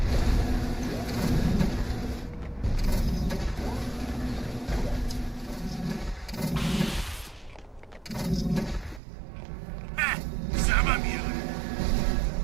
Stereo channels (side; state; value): left; drops out; at 9.0 s